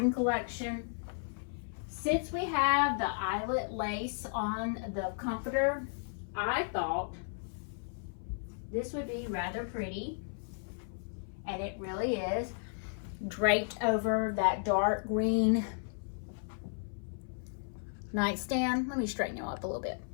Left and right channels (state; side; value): silent; right; 55 dB below the other